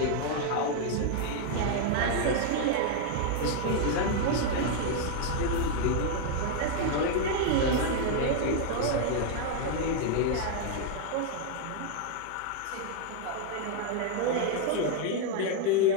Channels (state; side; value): different; both; correlation 0.00